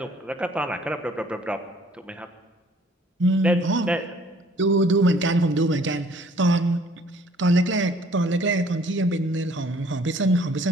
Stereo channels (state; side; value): normal; both; correlation 0.58